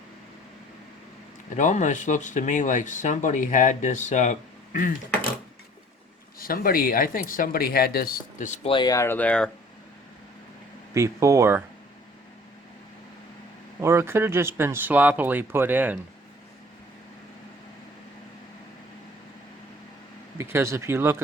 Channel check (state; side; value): normal; both; correlation 0.51